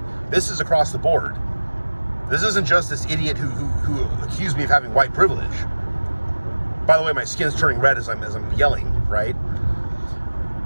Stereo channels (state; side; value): inverted; both; correlation -1.00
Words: this is across the board. This isn't just this idiot who accused me of having white privilege. By the way, my skin's turning red as I'm yelling, right?